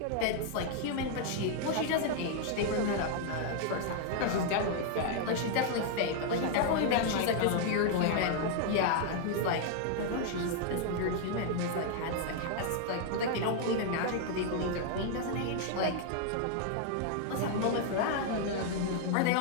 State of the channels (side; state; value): both; different; correlation 0.00